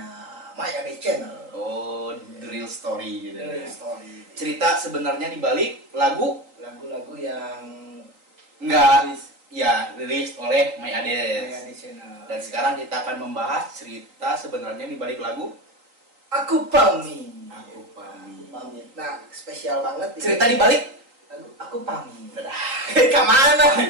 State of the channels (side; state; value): left; late; 3.9 ms